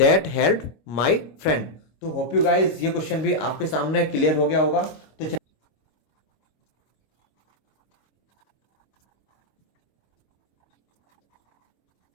help my friend. तो होप यू गाइस ये क्वेश्चन भी आपके सामने क्लियर हो गया होगा।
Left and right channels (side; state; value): right; late; 25 ms